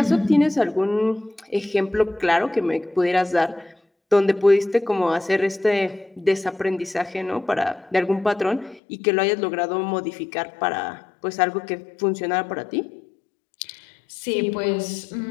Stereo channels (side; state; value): right; drops out; at 8.8 s